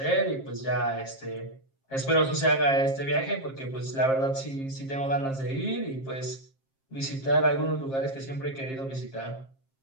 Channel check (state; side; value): late; right; 7.5 ms